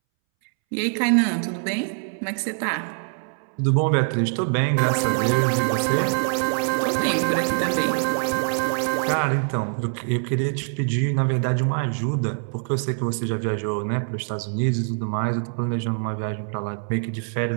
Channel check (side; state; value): left; silent; 63 dB below the other